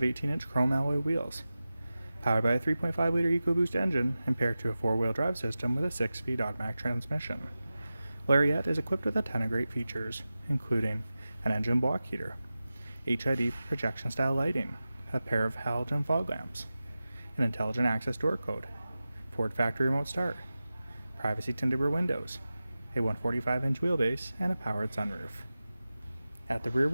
18-inch chrome alloy wheels. Powered by a 3.5-liter Ecoboost engine and paired to a 4-wheel drive system with a 6-speed automatic transmission. Lariat is equipped with a ton of great features, including an engine block heater, HID projection-style lighting, a pair of halogen fog lamps, an intelligent access door code, Ford factory remote start, privacy tinted rear windows, a 145-inch wheelbase, and a powered sunroof. At the rear,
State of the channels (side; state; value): both; inverted; correlation -0.95